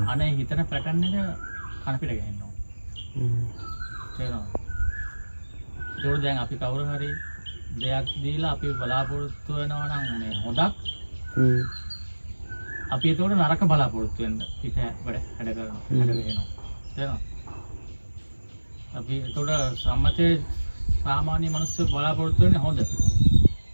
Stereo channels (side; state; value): both; inverted; correlation -1.00